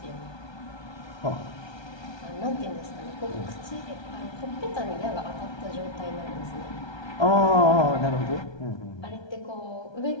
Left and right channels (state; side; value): late; right; 1.3 ms